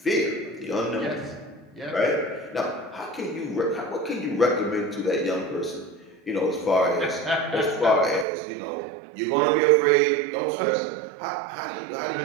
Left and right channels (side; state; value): left; drops out; at 8.2 s